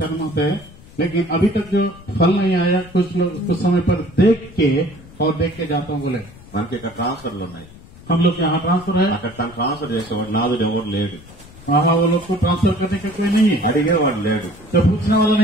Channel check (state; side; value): noise; left; rumble, 21 dB below the sound